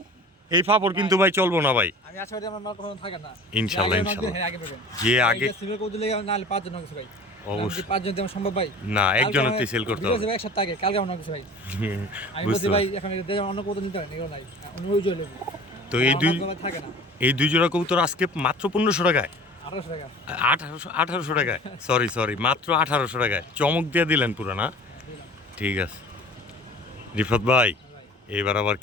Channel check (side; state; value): both; normal; correlation 0.42